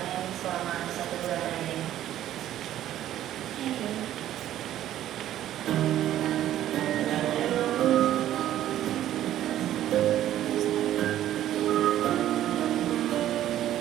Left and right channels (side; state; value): left; quieter; 12.4 dB